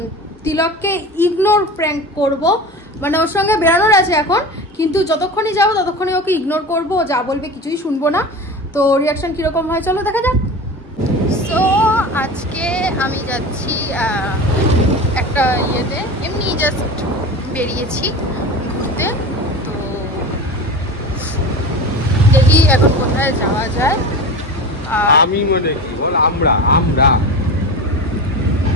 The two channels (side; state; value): both; normal; correlation 0.30